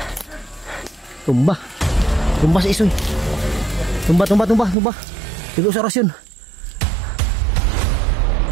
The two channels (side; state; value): left; drops out; at 4.8 s